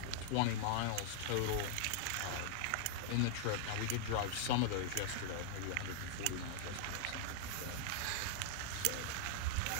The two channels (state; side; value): different; both; correlation -0.01